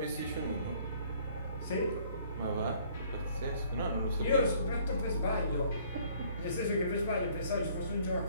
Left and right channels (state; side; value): inverted; both; correlation -0.58